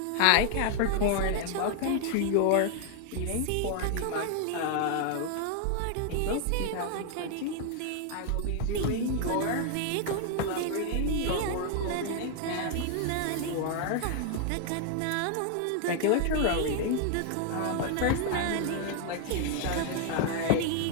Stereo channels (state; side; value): different; both; correlation 0.00